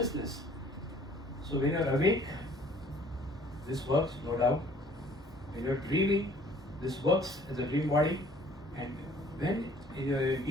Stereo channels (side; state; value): both; normal; correlation 0.56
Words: So when you are awake, this works, no doubt. When you are dreaming, this works as a dream body. And when you are in